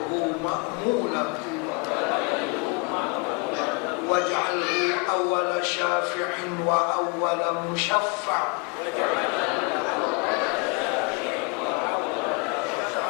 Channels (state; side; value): quieter; right; 32.3 dB